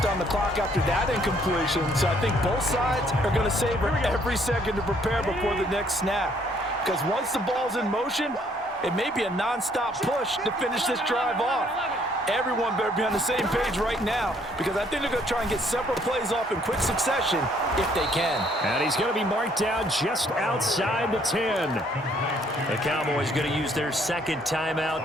on the clock after that incompletion, so I think both sides are going to savor every second to prepare before the next snap. Because once the ball's in motion, it may be a nonstop push to finish this drive off. Everyone better be on the same page right now, because I think they're going to try and get several plays off in quick succession if they can. And he's going to be marked down just outside the 10. The Cowboys going to use their 2nd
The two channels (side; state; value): both; normal; correlation 0.65